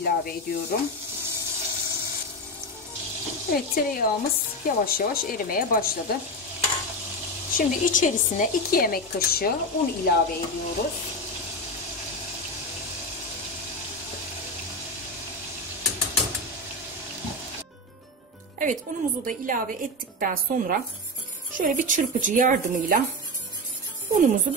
ediyorum. Evet, tereyağımız yavaş yavaş erimeye başladı. Şimdi içerisine 2 yemek kaşığı un ilave ediyoruz. Evet, unumuzu da ilave ettikten sonra şöyle bir çırpıcı yardımıyla unumuzu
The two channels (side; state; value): both; normal; correlation 0.16